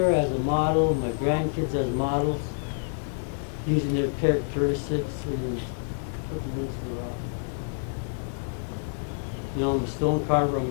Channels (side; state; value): right; silent; digital silence